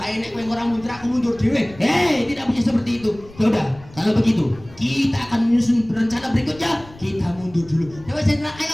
nek kowe ora mundur aku mundur dhewe. Hei, tidak bisa seperti itu. Ya udah, kalau begitu kita akan menyusun rencana berikutnya. Kita mundur dulu. Coba jenderal, ayo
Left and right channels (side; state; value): left; noise; rumble, 21 dB below the sound